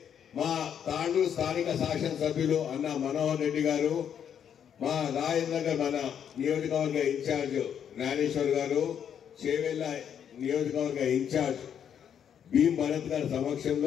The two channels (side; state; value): right; quieter; 8.6 dB